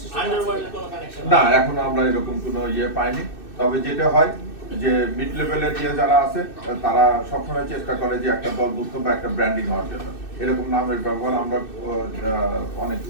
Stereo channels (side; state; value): right; late; 2.6 ms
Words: না, এখনো আমরা এরকম কোনো পাইনি। তবে যেটা হয় যে মিড লেভেলের যারা আছে তারা সবসময় চেষ্টা করে যে একটা দলভুক্ত বা একটা ব্র্যান্ডিং হওয়ার জন্য এরকম নামের ব্যবহার আমরা